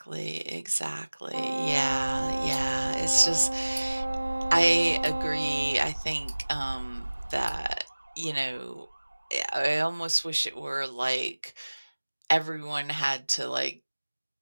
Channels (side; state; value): both; inverted; correlation -1.00